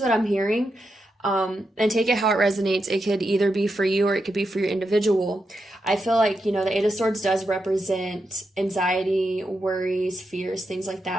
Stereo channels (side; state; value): both; normal; correlation 0.86